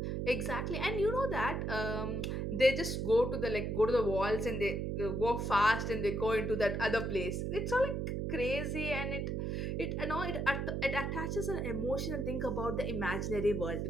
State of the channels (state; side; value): noise; right; hum, 1 dB below the sound